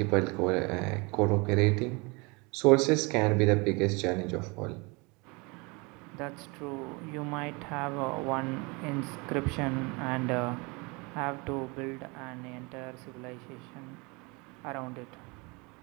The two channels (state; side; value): quieter; left; 28.0 dB